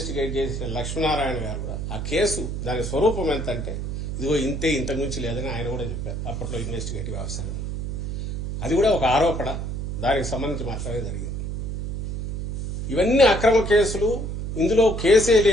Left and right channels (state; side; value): noise; right; hum, 4 dB below the sound